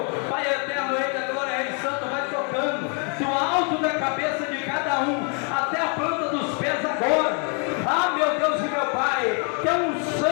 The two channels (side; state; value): right; quieter; 37.9 dB